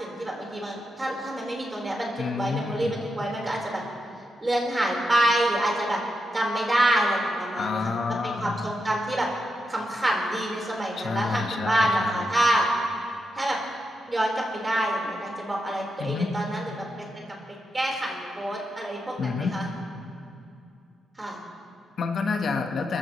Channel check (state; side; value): normal; both; correlation 0.85